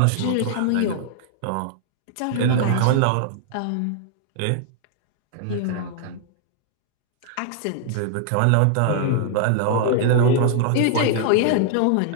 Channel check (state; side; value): different; both; correlation -0.01